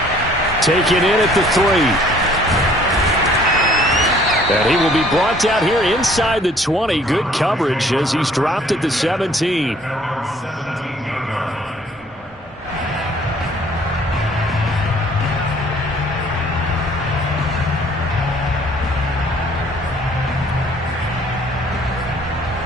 Taken in at the 3. And he will be brought down here inside the 20. Good coverage as he's dropped at the 17.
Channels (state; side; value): normal; both; correlation 0.58